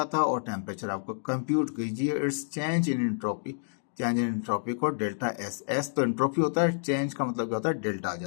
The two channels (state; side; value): silent; right; digital silence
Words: था और टेम्परेचर आपको कंप्यूट कीजिए। It's change in entropy, change in entropy को डेल्टा एस, एस तो एंट्रोपी होता है, चेंज का मतलब क्या होता है, डेल्टा आ